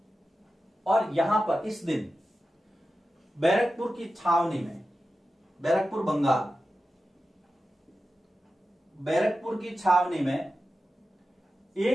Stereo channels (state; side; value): normal; both; correlation 0.93